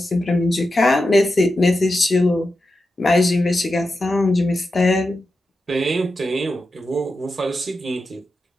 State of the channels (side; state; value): both; normal; correlation 0.90